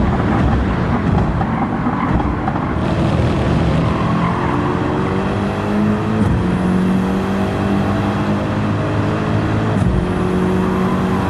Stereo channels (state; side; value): identical; both; correlation 1.00